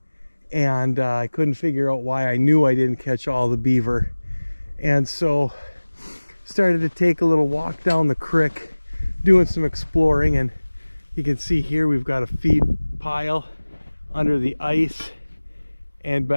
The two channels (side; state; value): both; inverted; correlation -1.00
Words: and I couldn't figure out why. I knew I didn't catch all the beaver, and so started to take a little walk down the creek, doing some exploring. And you can see here we've got a feed pile under the ice, and